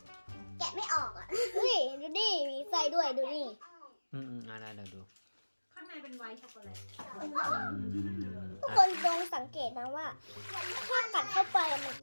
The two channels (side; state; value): both; inverted; correlation -1.00